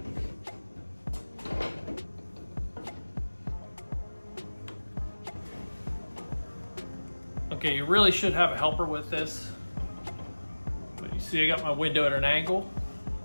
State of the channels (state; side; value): inverted; both; correlation -1.00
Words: Okay, you really should have a helper with this. But you see I got my window at an angle.